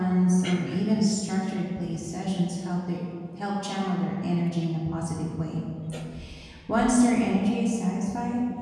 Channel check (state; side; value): identical; both; correlation 1.00